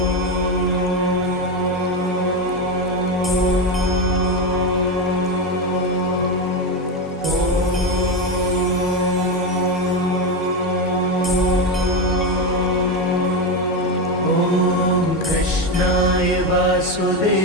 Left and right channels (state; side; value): normal; both; correlation 0.13